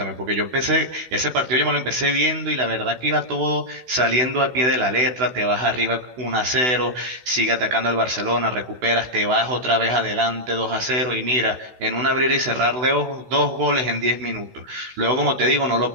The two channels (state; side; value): late; left; 16 ms